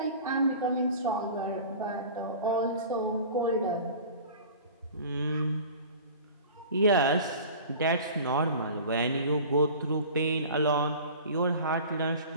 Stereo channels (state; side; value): inverted; both; correlation -0.40